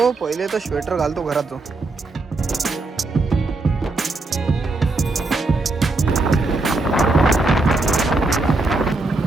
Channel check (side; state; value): left; quieter; 3.3 dB